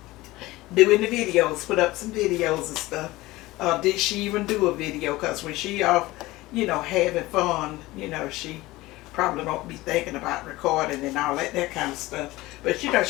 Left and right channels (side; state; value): right; quieter; 19.1 dB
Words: doing the videos, put up some videos and stuff. Did she even do a video? Because when she off, having fun, she probably don't be thinking about recording and all that kind of stuff. But she